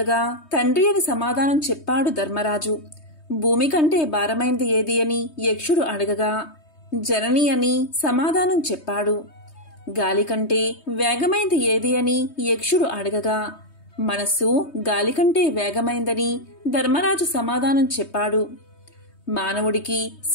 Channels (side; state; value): right; late; 3.2 ms